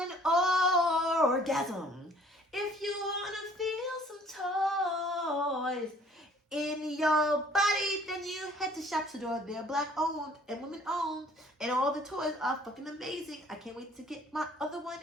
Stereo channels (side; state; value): both; normal; correlation 0.56